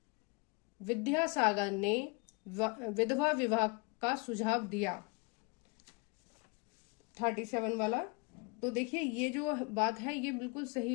विद्यासागर ने विधवा विवाह का सुझाव दिया। 37 वाला, तो देखिए ये जो बात है ये बिल्कुल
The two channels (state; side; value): quieter; right; 30.6 dB